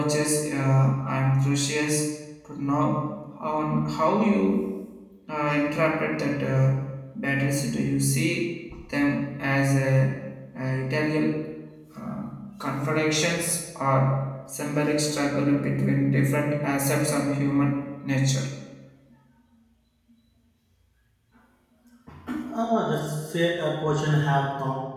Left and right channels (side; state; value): both; identical; correlation 1.00